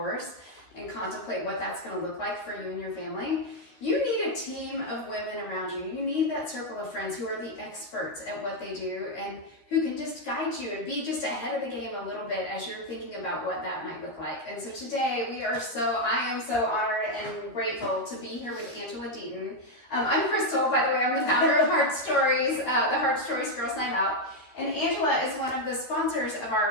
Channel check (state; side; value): late; right; 13 ms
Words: and contemplate what that's going to look like for you and your family, you need a team of women around you. You need that circle of friends who are the experts at what they do and who can just guide you and be just ahead of the game a little bit as you're thinking about what that might look like. And so today I am so honored and grateful to be here with Angela Deaton. I'm Crystal, by the way. I'm the founder of HeartStories, the HeartStories Girls Night Out. And Angela is one of the sponsors of